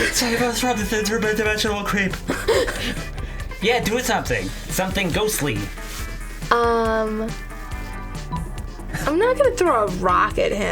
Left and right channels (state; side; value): identical; both; correlation 1.00